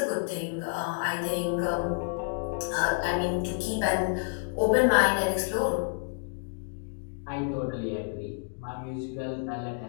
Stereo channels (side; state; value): right; silent; digital silence